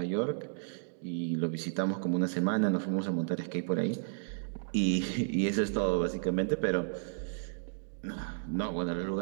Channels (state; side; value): silent; left; digital silence